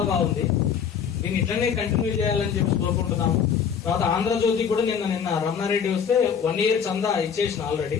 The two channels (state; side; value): quieter; right; 7.3 dB